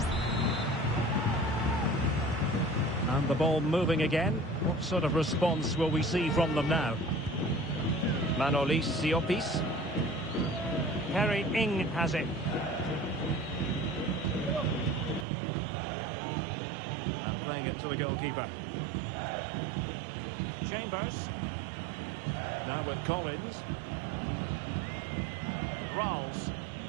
And the ball moving again. What sort of response will we see from them now? Manolis Siopis. Harry Ing has it. And playing it to the goalkeeper. Chambers. Now with Collins. Ralls.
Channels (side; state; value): left; drops out; at 15.2 s